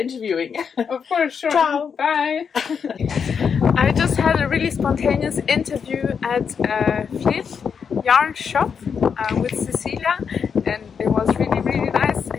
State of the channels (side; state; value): right; quieter; 6.6 dB